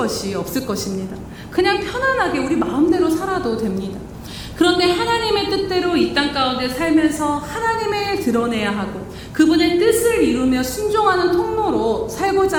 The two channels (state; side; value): identical; both; correlation 1.00